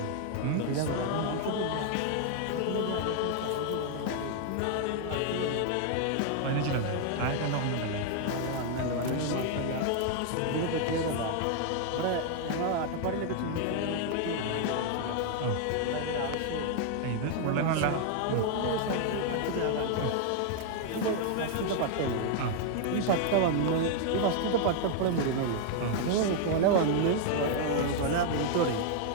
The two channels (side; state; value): both; different; correlation 0.00